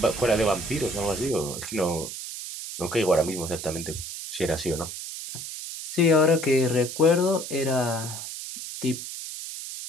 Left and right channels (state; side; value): noise; right; hiss, 8 dB below the sound